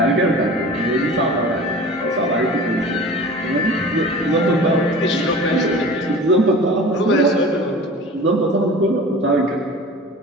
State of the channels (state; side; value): normal; both; correlation 0.39